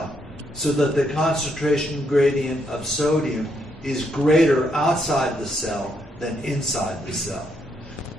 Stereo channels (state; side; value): normal; both; correlation 0.76